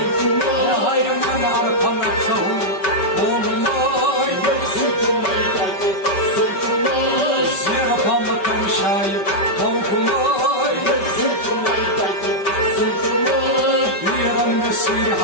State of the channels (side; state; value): right; late; 5.2 ms